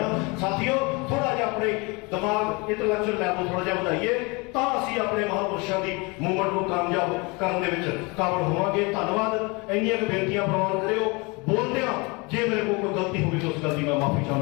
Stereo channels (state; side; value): quieter; right; 27.8 dB